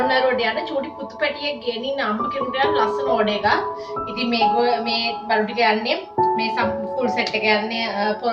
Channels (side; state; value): both; identical; correlation 1.00